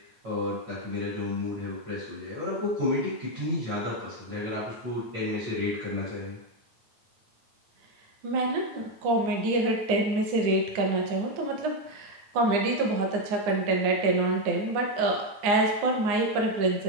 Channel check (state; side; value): late; left; 9.7 ms